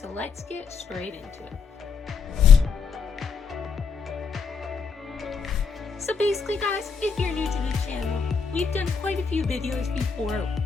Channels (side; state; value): right; quieter; 5.7 dB